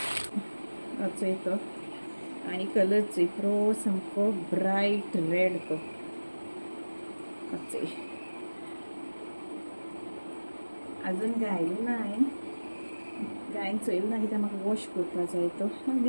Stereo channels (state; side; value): inverted; both; correlation -1.00